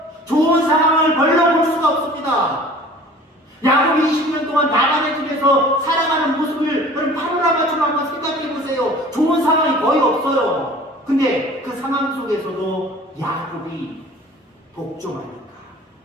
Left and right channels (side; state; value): both; normal; correlation 0.46